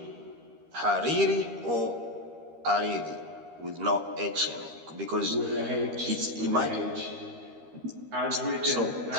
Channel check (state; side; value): late; left; 13 ms